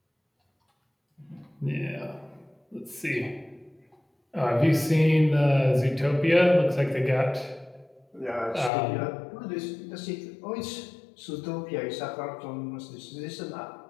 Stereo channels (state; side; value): drops out; right; at 8.7 s